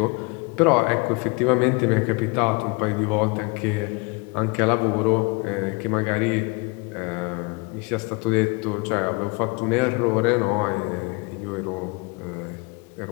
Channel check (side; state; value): right; quieter; 29.5 dB